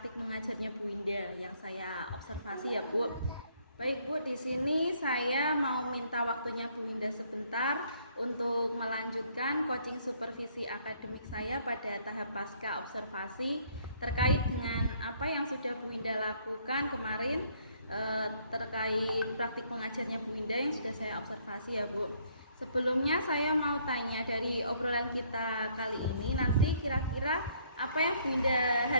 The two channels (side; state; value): both; inverted; correlation -0.65